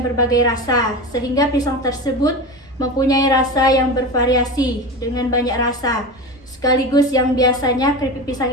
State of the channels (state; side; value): normal; both; correlation 0.25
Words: berbagai rasa, sehingga pisang tersebut mempunyai rasa yang bervariasi dengan banyak rasa. Sekaligus yang biasanya keripik pisang